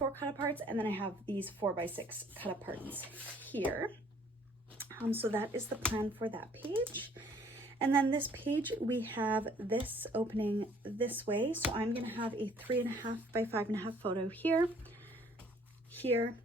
cut aparts, and then I have these 4x6 cut aparts here. So that is the plan for that page. And then this page, we have this opening this way. So I'm gonna have a 3.5 by 5.5 photo here, here,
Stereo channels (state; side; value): normal; both; correlation 0.59